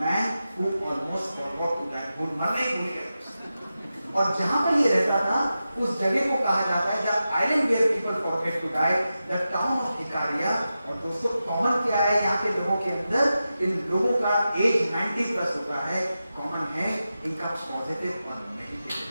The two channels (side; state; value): both; inverted; correlation -0.92